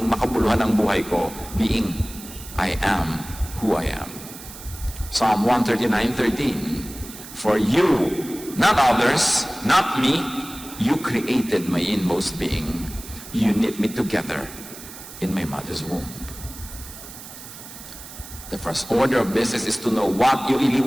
makabuluhan ang buhay ko, being I am who I am. Psalm 139:13, for you, not others, not me, you created my inmost being. You knit me together in my mother's womb. The first order of business is to know what you really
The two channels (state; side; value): noise; right; hiss, 14 dB below the sound